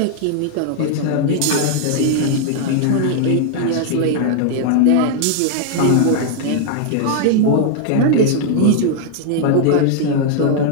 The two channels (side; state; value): both; different; correlation 0.00